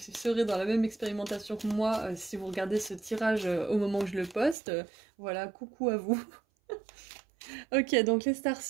dans la même expérimentation que moi, si vous regardez ce tirage au moment où je le poste, voilà, coucou à vous. Ok, donc les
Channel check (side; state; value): left; drops out; at 4.5 s